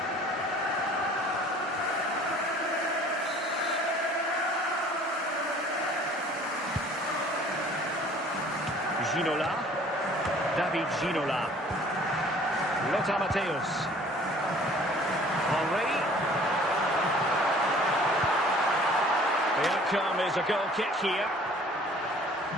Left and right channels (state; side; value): normal; both; correlation 0.52